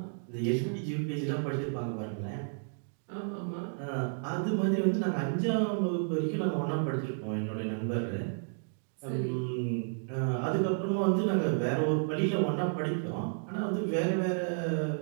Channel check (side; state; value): left; silent; digital silence